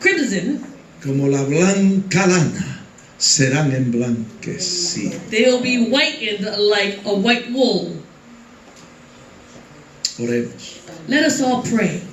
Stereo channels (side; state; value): both; identical; correlation 1.00